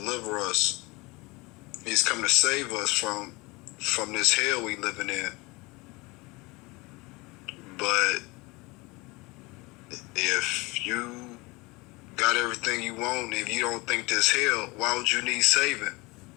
us. He's coming to save us from this hell we living in. But if you got everything you want, if you don't think this hell, why would you need saving?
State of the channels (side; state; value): right; quieter; 24.3 dB